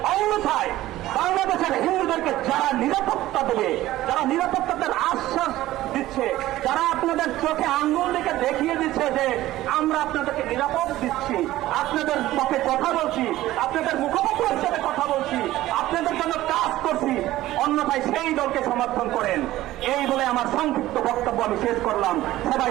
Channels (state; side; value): quieter; left; 15.6 dB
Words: অন্যথায় বাংলাদেশের হিন্দুদেরকে যারা নিরাপত্তা দেবে, যারা নিরাপত্তার আশ্বাস দিচ্ছে, যারা আপনাদের চোখে আঙ্গুল দিকে দেখিয়ে দিচ্ছে যে আমরা আপনাদেরকে নিরাপদ দিচ্ছি, আপনাদের পক্ষে কথা বলছি, আপনাদের মুখপাত্র হিসেবে কথা বলছি, আপনাদের জন্য কাজ করছি, অন্যথায় সেই দলকে সমর্থন করেন। এই বলে আমার সংক্ষিপ্ত বক্তব্য আমি শেষ করলাম। সবাই